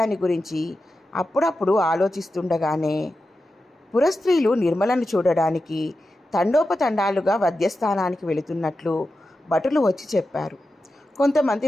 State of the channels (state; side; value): normal; both; correlation 0.91